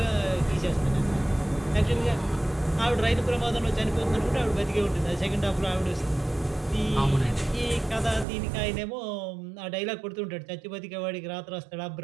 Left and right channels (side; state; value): left; drops out; at 8.2 s